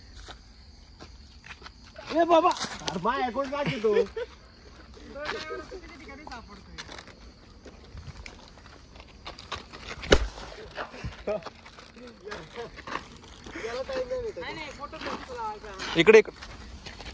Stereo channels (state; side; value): identical; both; correlation 1.00